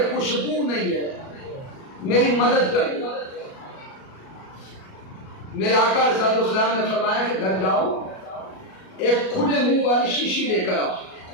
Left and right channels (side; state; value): right; late; 37 ms